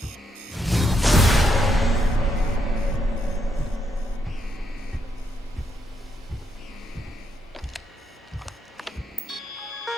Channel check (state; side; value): normal; both; correlation 0.79